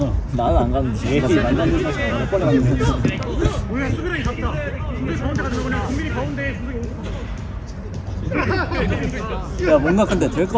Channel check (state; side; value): identical; both; correlation 1.00